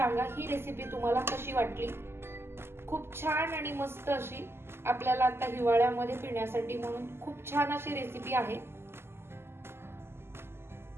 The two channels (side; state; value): left; late; 0.12 ms